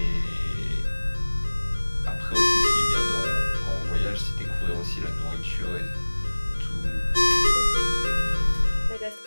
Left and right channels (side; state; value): both; inverted; correlation -1.00